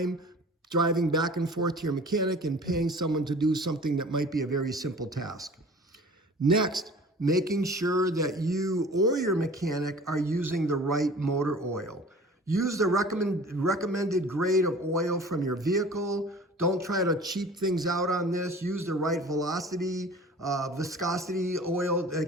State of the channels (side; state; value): both; normal; correlation 0.44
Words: driving back and forth to your mechanic and paying someone to do something that might be a very simple task. Next, making sure that you or your mechanic are using the right motor oil. Use the recommended grade of oil from your vehicle. Don't try to cheap things out on this. Use the right viscosity oil